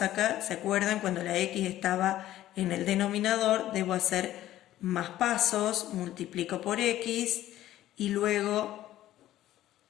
acá? ¿Se acuerdan? Cuando la X estaba en el denominador, debo hacer más pasos, multiplico por X y luego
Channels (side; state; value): right; quieter; 13.8 dB